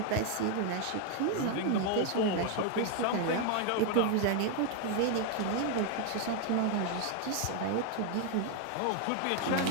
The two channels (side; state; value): both; different; correlation 0.00